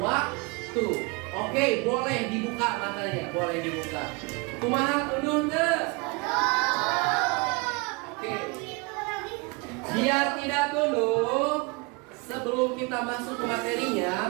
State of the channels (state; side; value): quieter; left; 28.9 dB